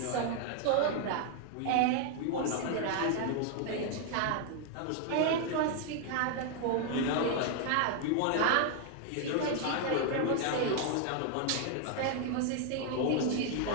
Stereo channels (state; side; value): different; both; correlation 0.00